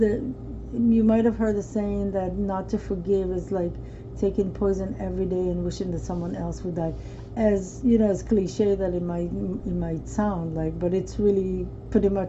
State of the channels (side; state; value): both; identical; correlation 1.00